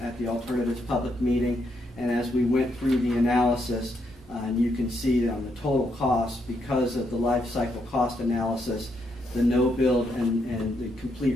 the Alternatives public meeting. And as we went through the analysis, and you can see on the total cost, because of the life cycle cost analysis, the no-build and the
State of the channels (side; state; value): both; normal; correlation 0.78